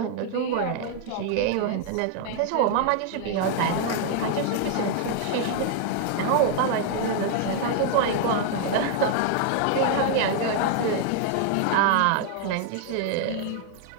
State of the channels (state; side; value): different; both; correlation 0.00